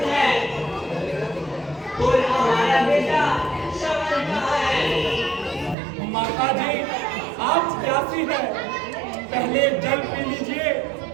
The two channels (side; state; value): left; drops out; at 5.8 s